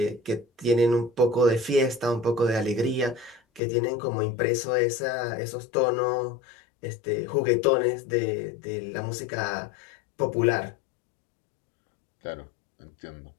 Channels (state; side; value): drops out; right; at 3.6 s